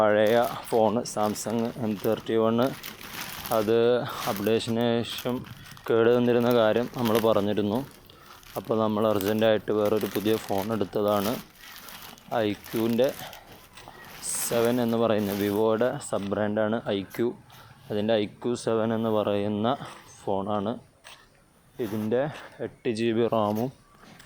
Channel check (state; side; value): identical; both; correlation 1.00